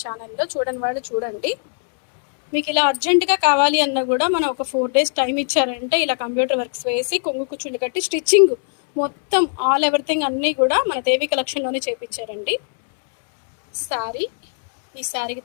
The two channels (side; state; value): right; silent; 66 dB below the other